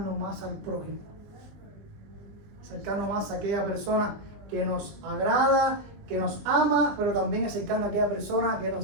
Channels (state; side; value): late; left; 20 ms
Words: más al prójimo. Acercarnos más a aquella persona que nos agrada, que nos ama, pero también acercarnos a aquella persona que